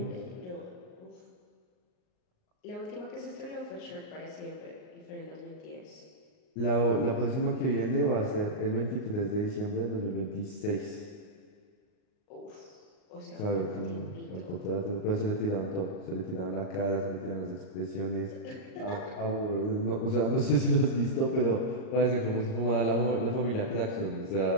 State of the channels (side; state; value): right; late; 38 ms